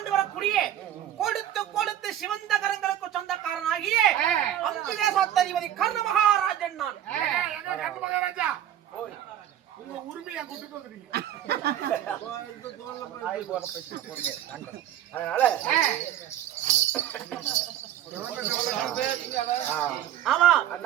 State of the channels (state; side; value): quieter; left; 11.3 dB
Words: வரக்கூடிய கொடுத்து கொடுத்து சிவந்த கரங்களுக்கு சொந்தக்காரனாகிய அங்கு தேசாதிபதி கர்ண மகாராஜன் நான். உங்க உரிமையை கூட்டிட்டு வந்துட்டீங்க. அதனால ஆமா